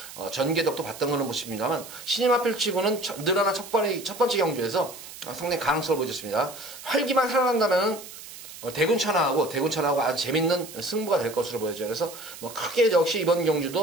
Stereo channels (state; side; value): noise; right; hiss, 14 dB below the sound